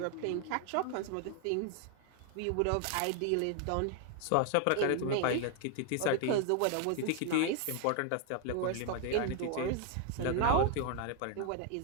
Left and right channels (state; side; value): different; both; correlation 0.00